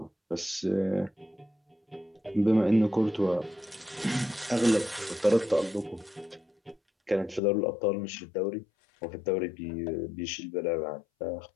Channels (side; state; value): right; drops out; at 7.4 s